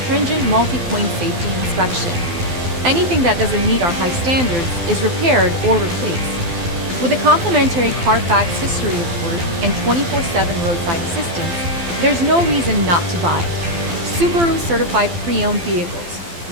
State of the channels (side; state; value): left; late; 12 ms